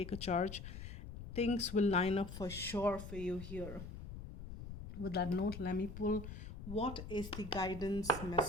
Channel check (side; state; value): left; noise; rumble, 9 dB below the sound